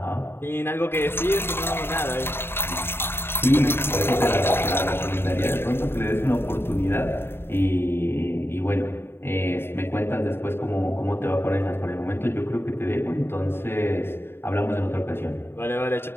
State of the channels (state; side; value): late; right; 0.11 ms